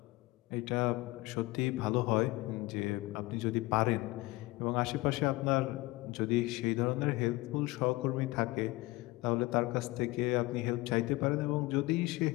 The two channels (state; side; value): quieter; right; 20.8 dB